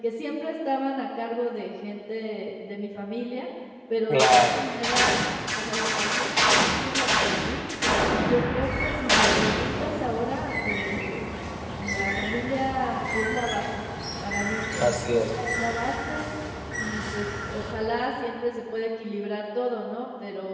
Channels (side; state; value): both; identical; correlation 1.00